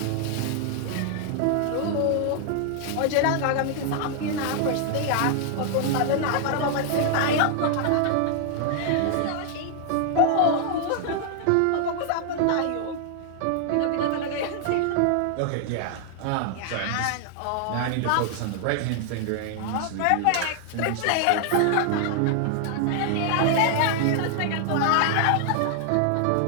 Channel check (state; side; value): different; both; correlation 0.00